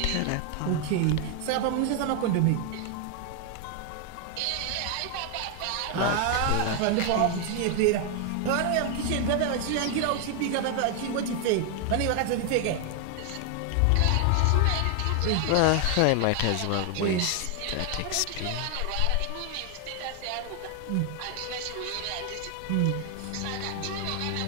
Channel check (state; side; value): different; both; correlation 0.00